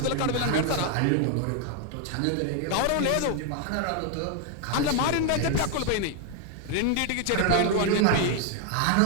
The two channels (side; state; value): both; different; correlation 0.00